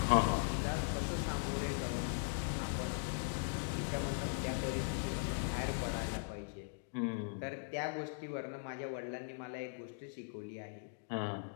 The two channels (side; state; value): right; silent; digital silence